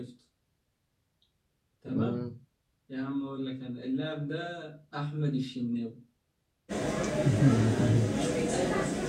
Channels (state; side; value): identical; both; correlation 1.00